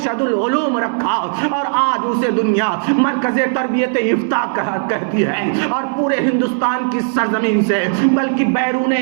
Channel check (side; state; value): left; silent; 66 dB below the other